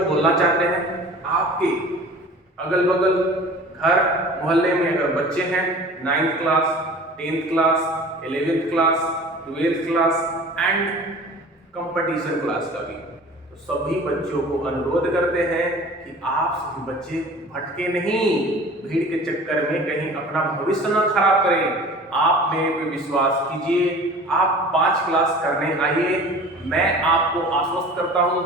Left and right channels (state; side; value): normal; both; correlation 0.42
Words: बोलना चाहते हैं, आपके अगल बगल घर मोहल्ले में अगर बच्चे हैं 9th class 10th class 11th class 12th class and competition class का भी, तो सभी बच्चों को अनुरोध करते हैं कि आप सभी बच्चे भटके नहीं, भीड़ के चक्कर में कहीं अपना भविष्य न खराब करें। आप मेरे पे विश्वास कीजिए, आप 5 क्लास करने आइए, मैं आपको आश्वस्त करता हूँ,